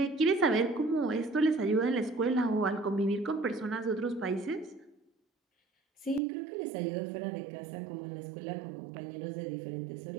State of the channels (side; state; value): left; drops out; at 6.2 s